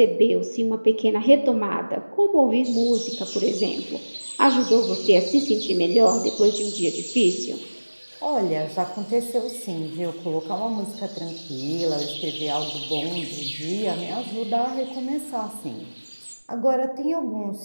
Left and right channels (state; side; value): inverted; both; correlation -1.00